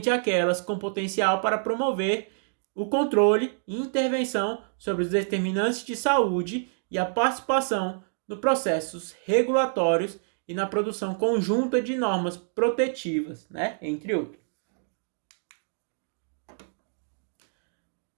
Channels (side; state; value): left; silent; digital silence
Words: aquelas com potencial para promover o controle e intervenção sobre os determinantes de saúde e a participação nos processos regulatórios e na produção conjunta de normas protetivas, né, entre outros.